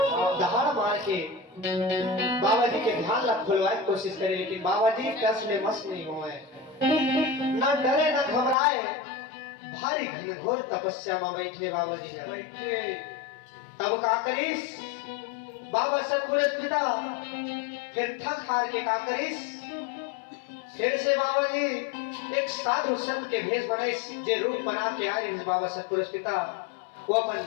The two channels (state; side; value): drops out; right; at 8.6 s